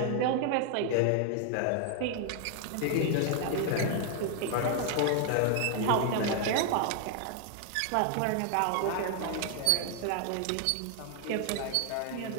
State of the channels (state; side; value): different; both; correlation 0.00